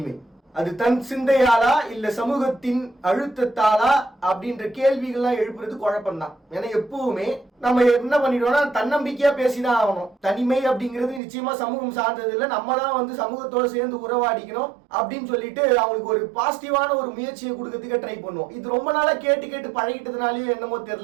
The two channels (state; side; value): drops out; left; at 11.2 s